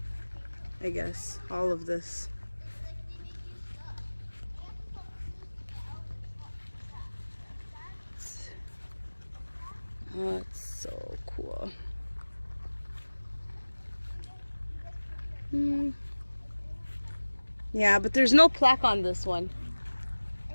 I guess, all of this. Oh, it's so cool. Yeah, but there's no plaque on this one.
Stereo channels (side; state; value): both; inverted; correlation -1.00